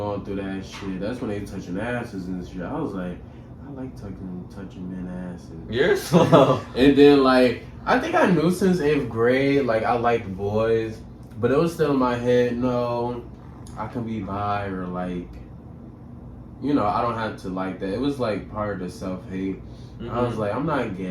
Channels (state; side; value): identical; both; correlation 1.00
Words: through that shit. That's when they touching asses and shit. I was like, like touching men ass. You're slow. And then like I think I knew since 8th grade like I liked boys, but it was still in my head. No, I can be bi or like, you know, I don't have to like that. It was like part of the self-hate. I was like, I'm not